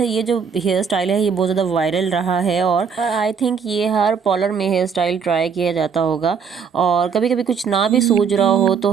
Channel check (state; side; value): quieter; left; 6.2 dB